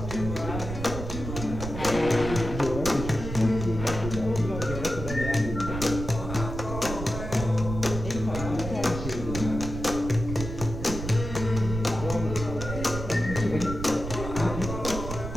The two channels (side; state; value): right; noise; rumble, 7 dB below the sound